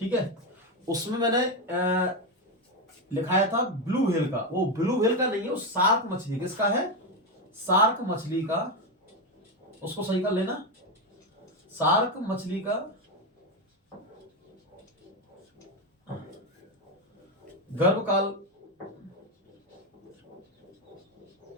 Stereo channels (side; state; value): both; normal; correlation 0.10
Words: है। उसमें मैंने लिखाया था ब्लू व्हेल का। वो ब्लू व्हेल का नहीं है, वो शार्क मछली। किसका है? शार्क मछली का। उसको सही कर लेना। शार्क मछली का गर्भकाल